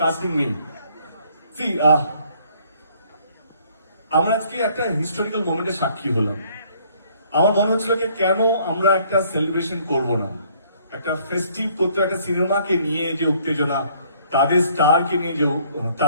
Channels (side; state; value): both; inverted; correlation -0.62